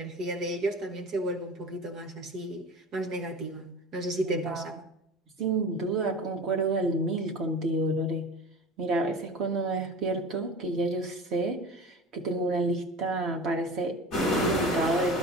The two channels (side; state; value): both; normal; correlation 0.35